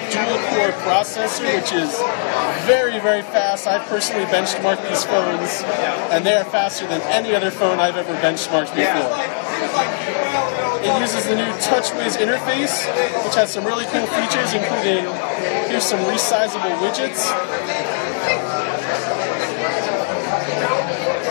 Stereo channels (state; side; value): silent; right; 66 dB below the other